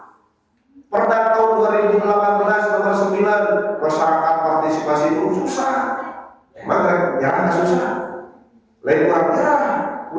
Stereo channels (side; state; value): both; identical; correlation 1.00